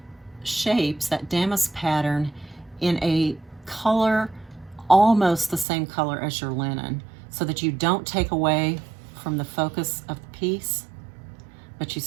shapes, that damask pattern, in a color almost the same color as your linen, so that you don't take away from the focus of the piece, but you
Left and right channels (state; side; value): drops out; left; at 5.7 s